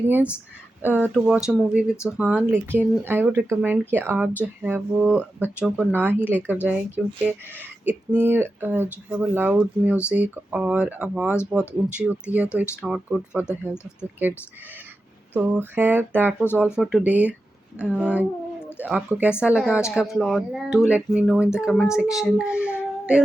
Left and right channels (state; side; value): normal; both; correlation 0.91